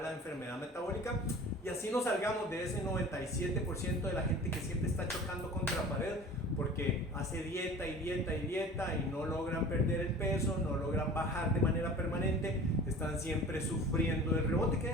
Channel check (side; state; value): both; normal; correlation 0.41